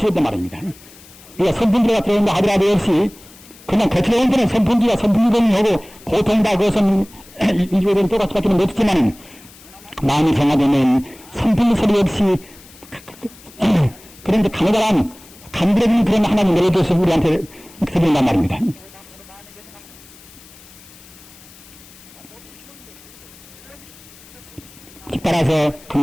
말입니다. 우리가 선풍기가 들어온다 하더라도 역시 그냥 거치는 때는 선풍기가 선풍기동이 하고 보통 다 그것은 인류들은 똑같이 밖에는 못했지만 마음이 정화되면 선풍기 소리 없이 그런 강렬한 간드러진 그런 하나님 멜로디에서 우리한테 드린단 말입니다. 따라서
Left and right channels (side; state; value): left; noise; hiss, 22 dB below the sound